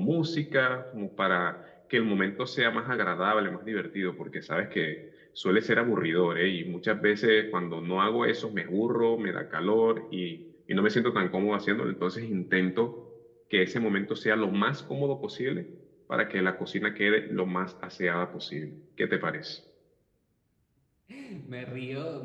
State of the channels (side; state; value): both; identical; correlation 1.00